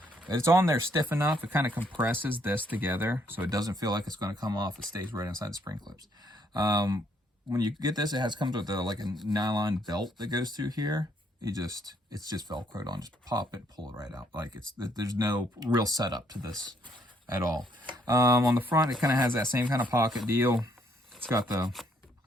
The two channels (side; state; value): both; normal; correlation 0.69